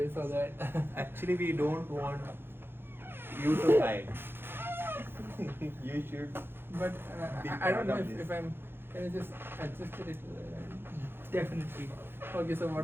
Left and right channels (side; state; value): left; late; 0.10 ms